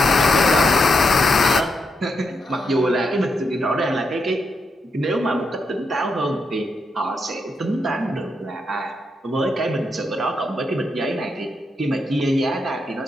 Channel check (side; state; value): both; normal; correlation 0.82